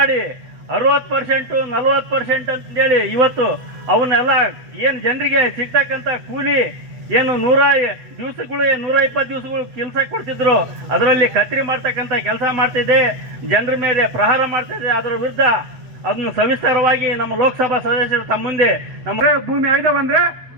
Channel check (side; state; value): left; late; 8.3 ms